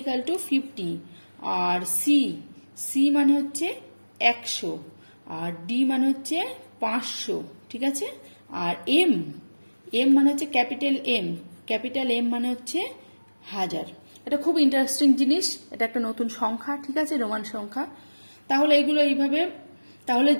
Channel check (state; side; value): inverted; both; correlation -1.00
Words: আর সি মানে হচ্ছে 100, আর ডি মানে হচ্ছে 500। ঠিক আছে, আর এম মানে হচ্ছে ক্যাপিটাল এম মানে হচ্ছে 1000। এটা খুব ইন্টারেস্টিং জিনিস, এটা একটা নতুন সংখ্যা। ঠিক আছে, রোমান সংখ্যা। তাহলে